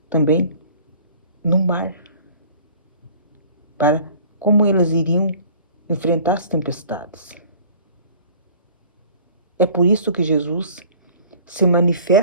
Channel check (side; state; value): both; inverted; correlation -0.48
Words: também no mar, para como eles iriam enfrentar as tempestades. É por isso que Jesus se